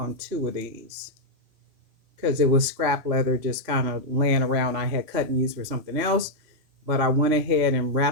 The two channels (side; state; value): left; late; 3.1 ms